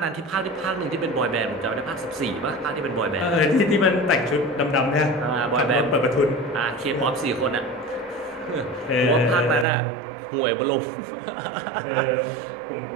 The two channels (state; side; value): drops out; left; at 9.7 s